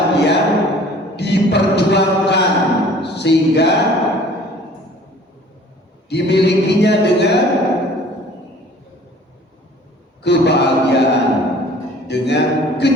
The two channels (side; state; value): both; normal; correlation 0.50